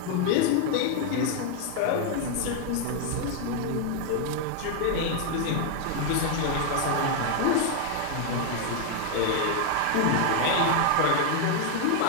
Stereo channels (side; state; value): both; different; correlation 0.00